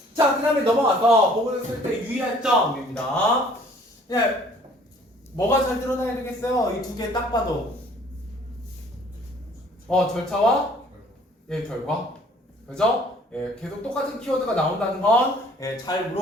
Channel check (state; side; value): normal; both; correlation 0.56